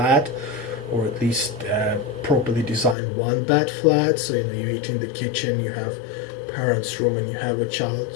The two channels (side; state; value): right; drops out; at 3.0 s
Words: or at least properly designed 1-bed flat. So you eat in the kitchen, you have parents' room, and you have a